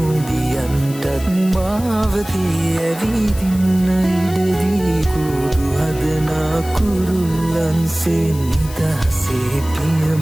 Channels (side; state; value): left; noise; hiss, 16 dB below the sound